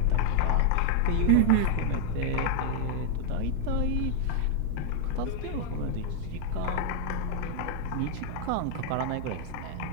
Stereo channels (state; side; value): different; both; correlation 0.00